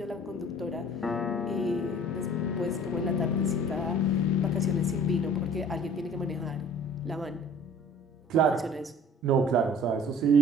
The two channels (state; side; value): normal; both; correlation 0.48